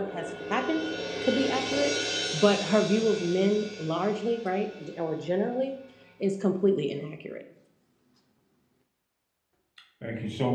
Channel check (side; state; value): both; identical; correlation 1.00